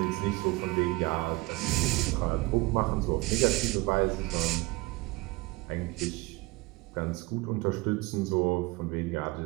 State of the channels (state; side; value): quieter; left; 22.8 dB